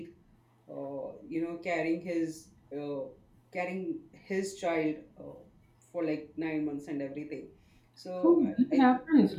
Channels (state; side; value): identical; both; correlation 1.00